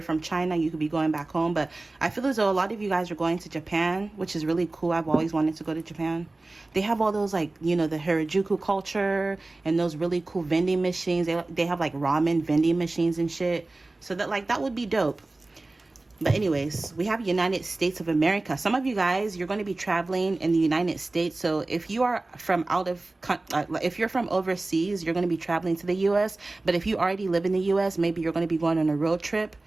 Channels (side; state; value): left; quieter; 3.0 dB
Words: from China, you could be going back home. But I feel as though a lot of you guys are going to Japan, which is really cool. I've always wanted to go to Japan. They have all those, like, you know, the Harajuku culture and those really cool vending machines. They have like ramen vending machines and shit. So that, like, that would be dope. But anyways, we have United States of America. Some of you guys, you're going to be traveling in the United States. So if you are from if you're from overseas, you're going to be traveling to the U.S. But if you already live in the U.S., maybe you're going to be going on a road trip.